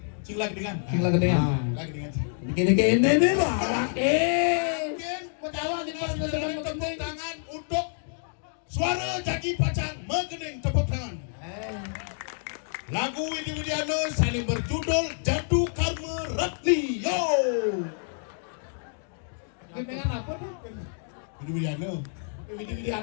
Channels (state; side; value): silent; right; digital silence